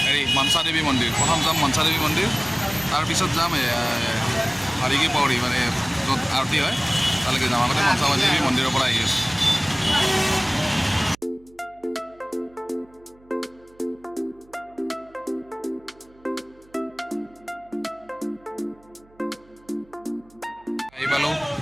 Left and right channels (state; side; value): noise; right; hum, 29 dB below the sound